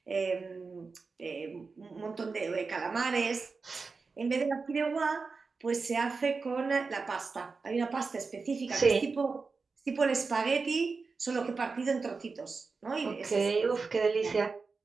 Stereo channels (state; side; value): quieter; left; 4.5 dB